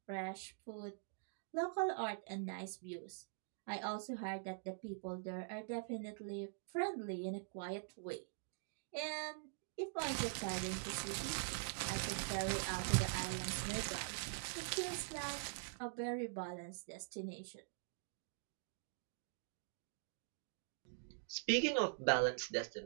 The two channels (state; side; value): silent; left; digital silence